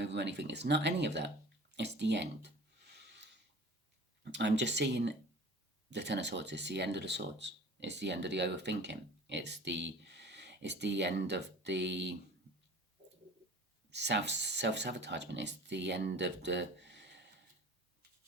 anything. It's not any of that. It's the end. I'm just seeing the Ten of Swords. It's the end of the swords. It's the end of the overthinking. It's the end of the self-sabotagement. It's the end of the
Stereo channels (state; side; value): normal; both; correlation 0.43